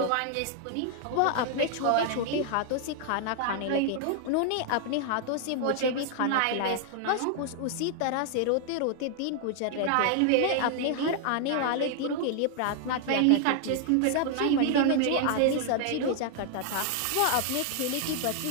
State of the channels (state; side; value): different; both; correlation 0.00